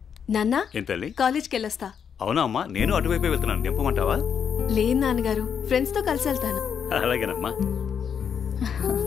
నాన్న ఏంటల్లి? కాలేజ్కి వెళ్ళొస్తా. అవునా అమ్మా, నేను అటువైపే వెళ్తున్నాను. నింపమంటావా? లేదు నాన్నగారు, ఫ్రెండ్స్ తో కలిసి వెళ్తాను. అలాగేనమ్మా,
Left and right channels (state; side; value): quieter; right; 7.5 dB